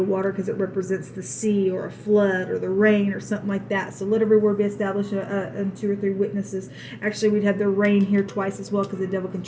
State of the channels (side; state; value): both; identical; correlation 1.00